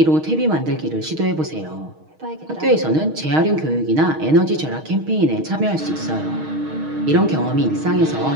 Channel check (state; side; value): late; left; 6.4 ms